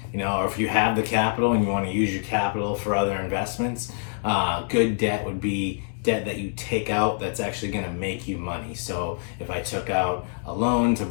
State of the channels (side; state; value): right; silent; digital silence